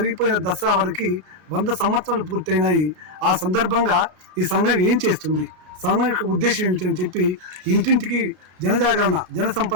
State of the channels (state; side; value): late; left; 32 ms